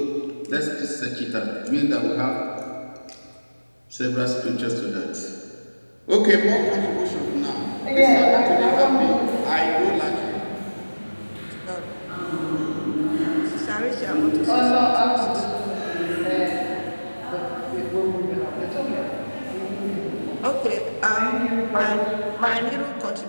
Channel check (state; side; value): inverted; both; correlation -1.00